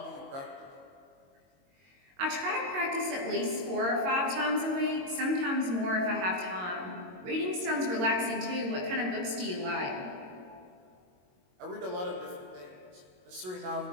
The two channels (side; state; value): left; late; 22 ms